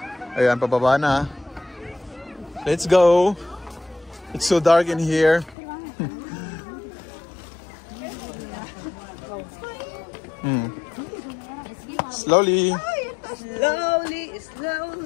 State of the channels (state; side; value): drops out; right; at 5.6 s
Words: Ayan, pababa na. Let's go. It's so dark in here. Slowly. Slowly.